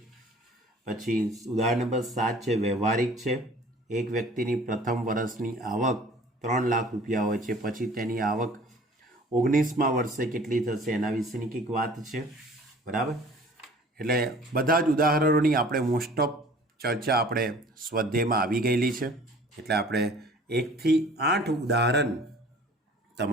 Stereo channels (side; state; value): both; normal; correlation 0.49